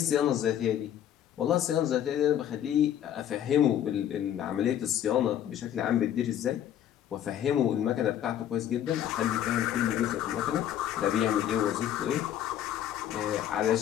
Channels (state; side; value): quieter; right; 10.6 dB